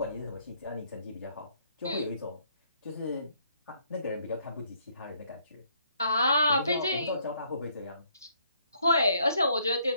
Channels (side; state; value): both; inverted; correlation -0.69